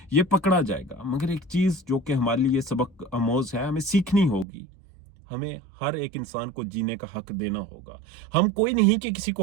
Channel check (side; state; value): left; drops out; at 4.5 s